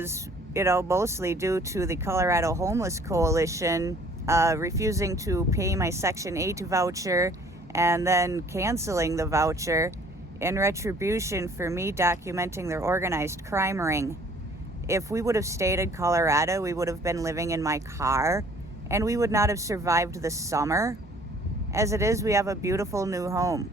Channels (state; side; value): normal; both; correlation 0.55